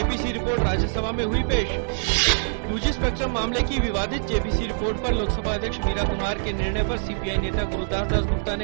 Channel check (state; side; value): silent; left; 62 dB below the other